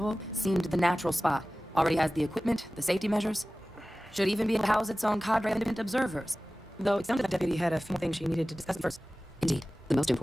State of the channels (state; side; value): normal; both; correlation 0.97